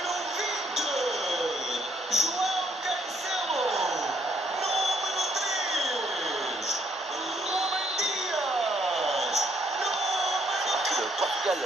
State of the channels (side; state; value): both; normal; correlation 0.69